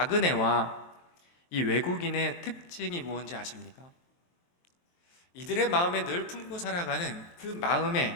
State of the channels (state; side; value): late; right; 23 ms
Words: 이 외국인의 특징이 무엇인지 아십니까? 이들의 마음에 늘 품고 살아가는 그